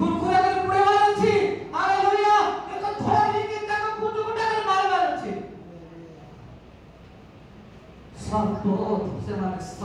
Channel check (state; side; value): identical; both; correlation 1.00